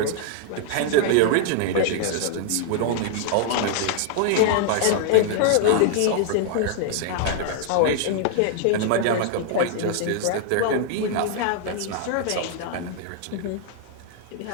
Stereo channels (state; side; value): different; both; correlation 0.00